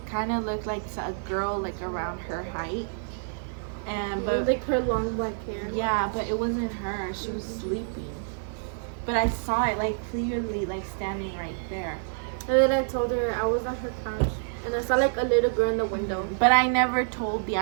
kind of looked like a girl like around her height. But like her long black hair. Yeah, but it wasn't her. She was sleeping. But I saw it like clearly, like standing right there. And then I told her I was on her couch, and I saw like a little girl in the window. But I never told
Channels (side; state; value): left; silent; 60 dB below the other